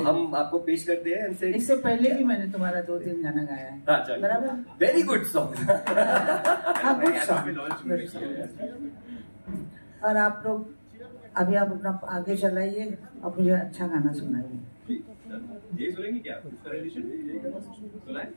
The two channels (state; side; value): inverted; both; correlation -1.00